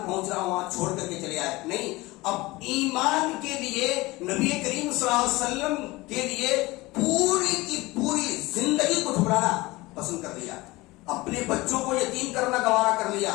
پہنچ رہا ہو وہاں چھوڑ کر کے چلے آئے. نہیں، اب ایمان کے لیے نبی کریم صلی اللہ علیہ وسلم کے لیے پوری کی پوری زندگی کو ٹھکرانا پسند کر لیا، اپنے بچوں کو یتیم کرنا گوارا کر لیا،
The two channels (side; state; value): right; quieter; 21.0 dB